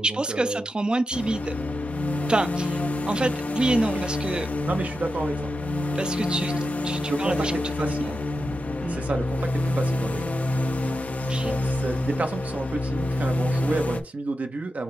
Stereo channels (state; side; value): normal; both; correlation 0.89